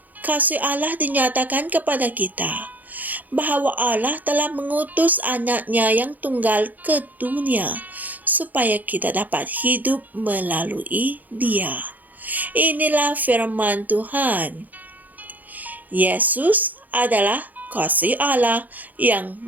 kasih Allah dinyatakan kepada kita, bahwa Allah telah mengutus anaknya yang tunggal ke dunia, supaya kita dapat hidup melalui Dia. Inilah firman Tuhan. Yesus adalah kasih Allah yang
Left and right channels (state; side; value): late; left; 0.082 ms